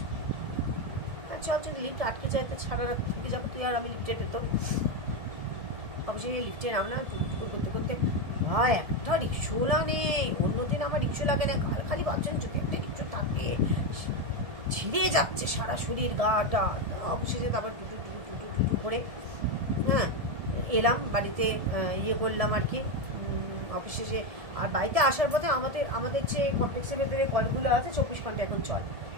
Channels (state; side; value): late; left; 1.7 ms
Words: চল যদি লিফট আটকে যায় তো সারা রাত থেকে যাবো তুই আর আমি লিফটে পেতো। অবশ্যই লিফটে নামলাম, টুকটুকু করতে করতে। ভাই একটা রিক্সোলা নেই, অন্যদিন আমার রিক্সো লাগে না, কাল খালি ভাবছেন যদি একটা রিক্সো থাকে, ছিঁড়ে যাচ্ছে সারা শরীর গাটা। অবশেষে তারপর টুটু টুটু টুটু টুটু করে হ্যাঁ এলাম বাড়িতে, ইয়ে করলাম আর কি অবশেষে। আর বাড়িতে আসার পথে আমাদের যে কমপ্লেক্সের ভেতরে কলগুলো আছে 24 ঘন্টা এখন চল।